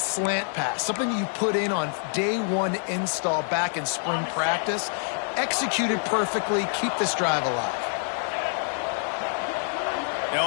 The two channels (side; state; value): right; silent; 59 dB below the other